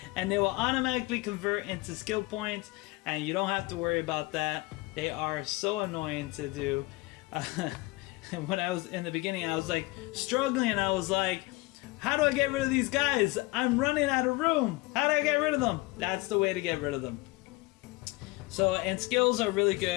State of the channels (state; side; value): quieter; right; 22.3 dB